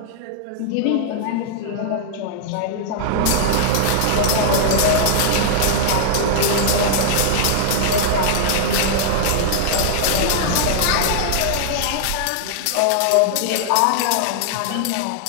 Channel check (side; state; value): both; different; correlation -0.01